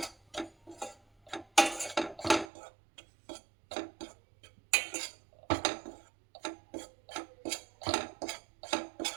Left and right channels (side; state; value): left; drops out; at 2.5 s